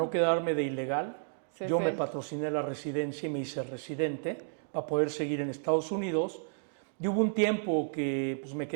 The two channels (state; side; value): silent; left; digital silence